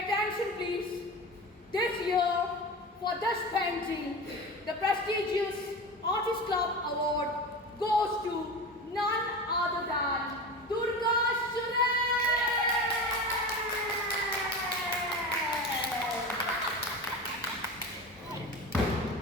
attention please. This year, for this painting, the prestigious Artist Club Award goes to none other than Durga Soren.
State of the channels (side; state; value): both; normal; correlation 0.29